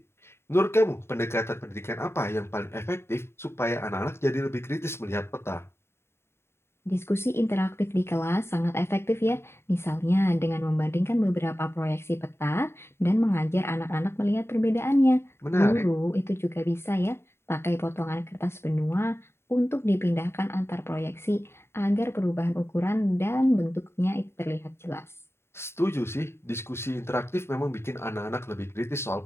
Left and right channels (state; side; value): late; right; 0.12 ms